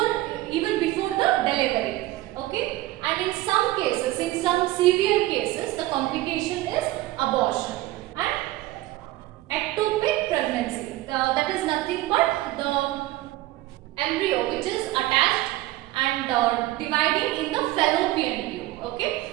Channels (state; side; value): quieter; left; 16.8 dB